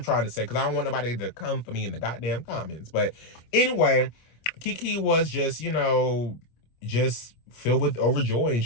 trying to say, because I don't want nobody to come for me in the goddamn comments. But anyway, Keke was just, just filled with overjoy, and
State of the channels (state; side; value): late; right; 25 ms